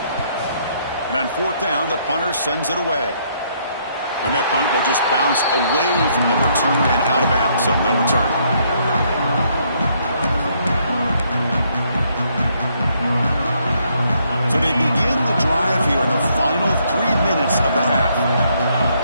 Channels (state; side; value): inverted; both; correlation -0.71